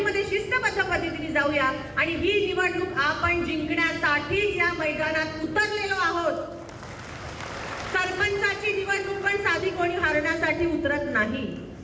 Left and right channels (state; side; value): identical; both; correlation 1.00